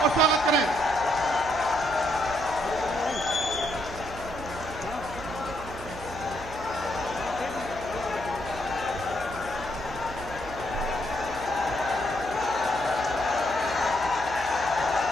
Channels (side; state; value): right; noise; hum, 14 dB below the sound